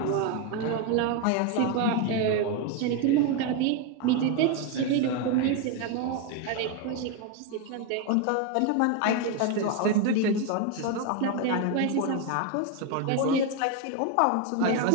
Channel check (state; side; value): different; both; correlation 0.02